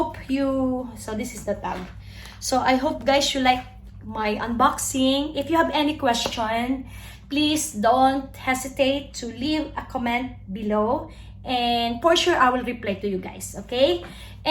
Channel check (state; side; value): identical; both; correlation 1.00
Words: you, so this is the tag. So I hope, guys, you like my unboxing. If you have any question, please don't hesitate to leave a comment below, and for sure I will reply to you guys, okay?